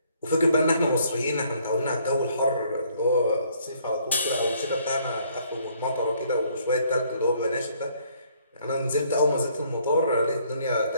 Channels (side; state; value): both; inverted; correlation -0.65